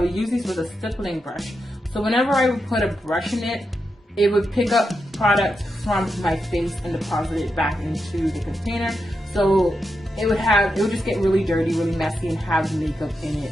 would use these with a stippling brush, so whenever I would put a brush in it, it would pick up product from my face and deposit it back into the container. So it would just get really dirty, really messy, and have makeup in it.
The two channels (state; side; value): normal; both; correlation 0.86